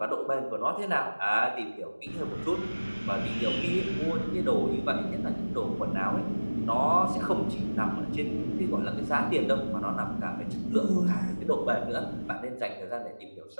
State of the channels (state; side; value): inverted; both; correlation -1.00